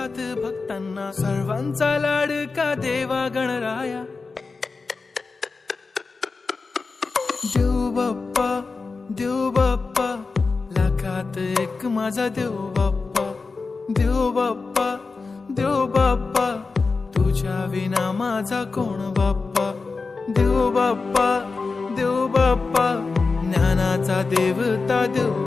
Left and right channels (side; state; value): right; quieter; 4.2 dB